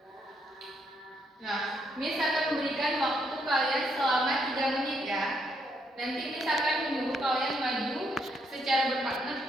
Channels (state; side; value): normal; both; correlation 0.74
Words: Nah, Miss akan memberikan waktu kalian selama 3 menit ya. Nanti Miss akan menyuruh kalian maju secara berpartner